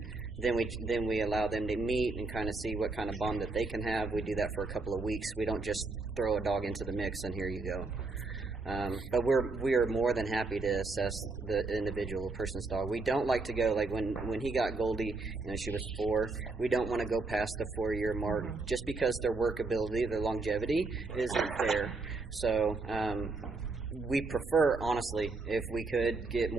then we allow them to meet and kind of see what kind of bond that they can have. We do that for a couple of weeks. We don't just throw a dog into the mix and here you go. But we are more than happy to assess the individual person's dog. We don't like to go, like when he got Goldie, she was 4. We don't want to go past the 4-year mark just because their workability, their longevity isn't there. So we prefer, honestly, if we could get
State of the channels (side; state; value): left; quieter; 3.7 dB